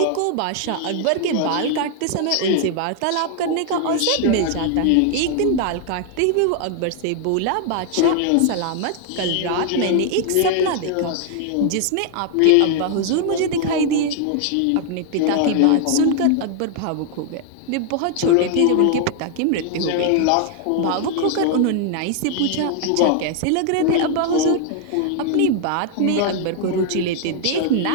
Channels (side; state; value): both; different; correlation 0.00